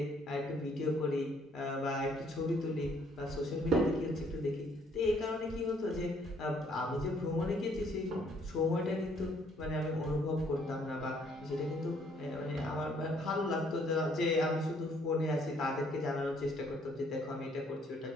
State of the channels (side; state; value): both; normal; correlation 0.65